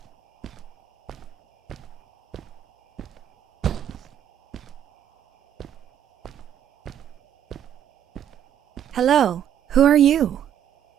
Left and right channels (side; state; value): left; quieter; 10.1 dB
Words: Hello, who are you?